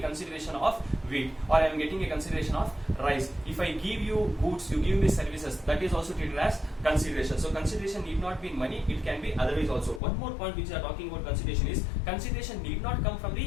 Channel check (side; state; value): right; drops out; at 10.0 s